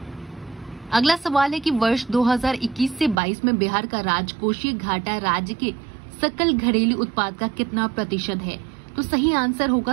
अगला सवाल है कि वर्ष 2021 से 22 में बिहार का राजकोषीय घाटा राज्य के सकल घरेलू उत्पाद का कितना प्रतिशत है? तो सही आंसर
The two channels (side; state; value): left; drops out; at 3.2 s